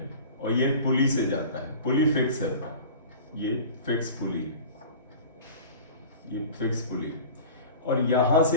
और ये पुली से जाता है, पुली फिक्स है, ये फिक्स पुली, ये फिक्स पुली, और यहां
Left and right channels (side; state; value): both; inverted; correlation -0.39